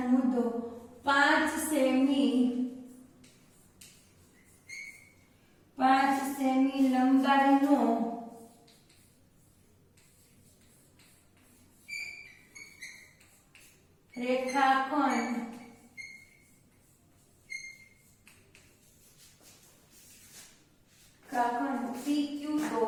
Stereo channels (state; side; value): identical; both; correlation 1.00